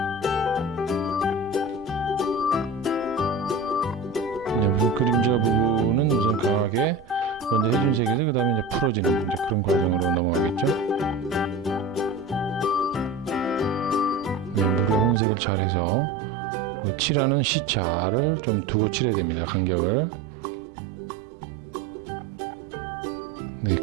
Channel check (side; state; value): left; drops out; at 15.2 s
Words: 우선 그림자 부분은 우선 강하게 먼저 해준 색에서 그 다음에 이제 풀어지는 그런 과정으로 넘어가겠죠. 네, 물의 혼색을 잘해서 칠하는 시차를 좀 두고 칠해야 됩니다. 간격을. 네,